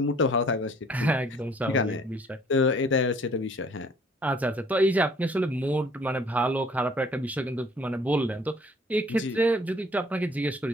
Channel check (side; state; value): both; normal; correlation 0.57